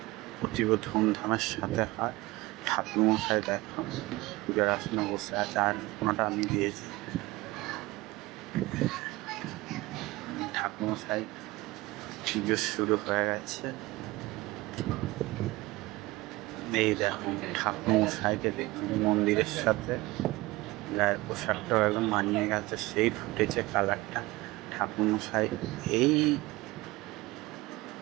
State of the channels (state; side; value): quieter; left; 20.3 dB